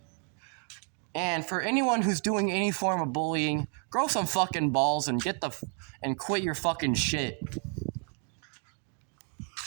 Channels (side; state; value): left; quieter; 38.1 dB